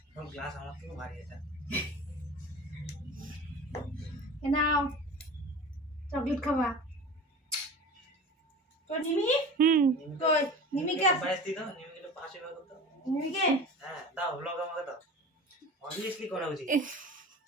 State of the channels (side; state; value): both; normal; correlation 0.36